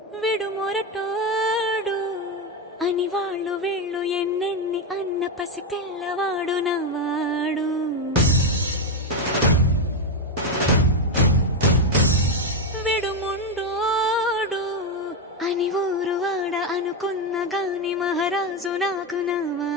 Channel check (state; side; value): normal; both; correlation 0.08